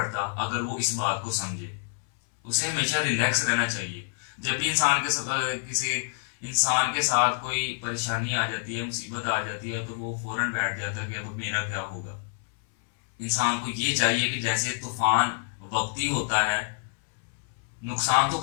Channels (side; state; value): right; silent; 60 dB below the other